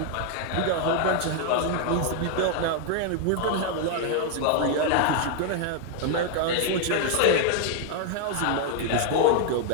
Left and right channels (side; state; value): both; different; correlation 0.00